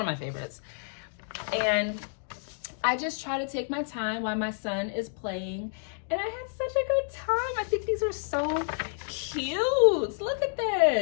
my favorites. And I just try to take my time while my son is playing, and I had such a good time. I think these are so cute. Look at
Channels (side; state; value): right; silent; digital silence